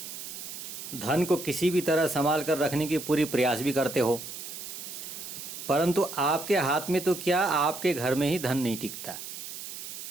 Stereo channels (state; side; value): noise; right; hiss, 9 dB below the sound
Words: धन को किसी भी तरह संभाल कर रखने की पूरी प्रयास भी करते हो, परंतु आपके हाथ में तो क्या, आपके घर में ही धन नहीं टिकता।